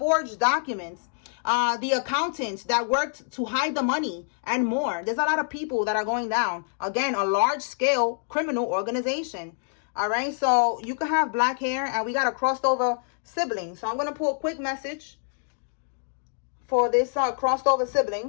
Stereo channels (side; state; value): right; silent; digital silence